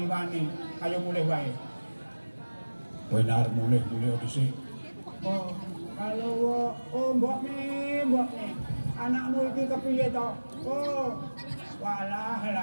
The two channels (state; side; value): inverted; both; correlation -1.00